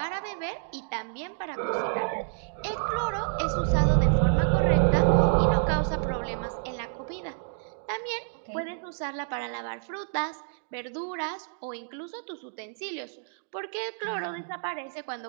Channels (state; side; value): silent; left; digital silence